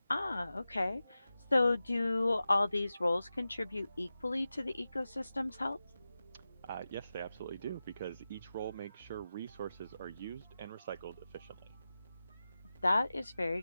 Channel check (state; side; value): inverted; both; correlation -0.94